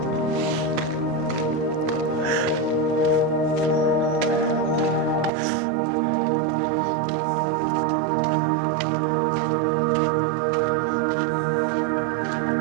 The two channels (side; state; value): left; drops out; at 5.3 s